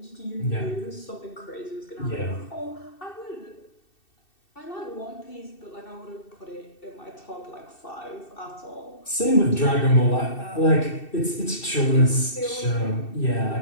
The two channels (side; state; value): right; late; 2.7 ms